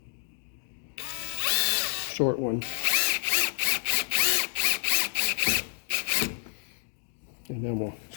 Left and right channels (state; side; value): silent; right; digital silence